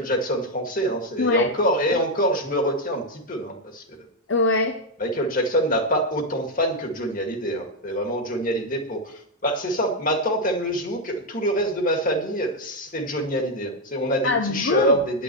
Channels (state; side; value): normal; both; correlation 0.03